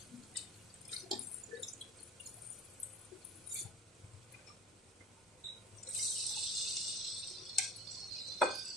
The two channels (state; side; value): normal; both; correlation 0.40